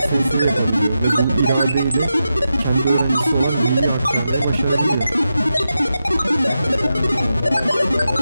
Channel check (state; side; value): inverted; both; correlation -0.89